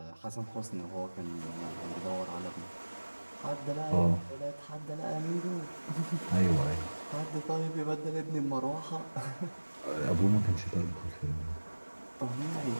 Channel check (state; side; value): inverted; both; correlation -1.00